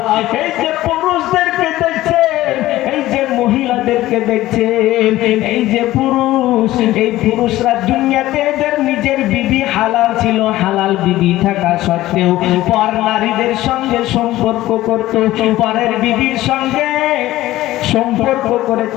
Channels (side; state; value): right; quieter; 15.9 dB